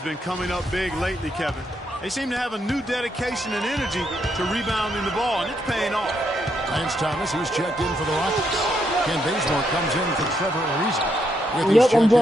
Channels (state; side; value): normal; both; correlation 0.78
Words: coming up big lately, Kevin. They seem to have a new dedication and energy to rebounding the ball, and it's paying off. Lance Thomas, he's checked in for the Rockets. Ken Bazemore comes in for Trevor Ariza. Yep, I'm